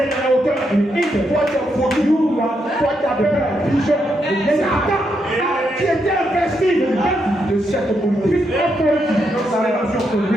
dans la hauteur. Il faut t'appeler pigeon. C'est Adam qui était investi de cette politique. Dans sa relation pour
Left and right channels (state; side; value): normal; both; correlation 0.80